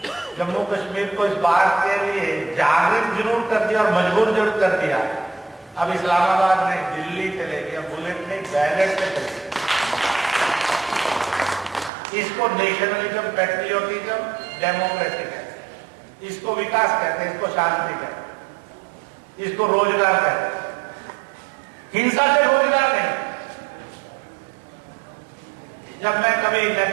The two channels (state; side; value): drops out; left; at 11.9 s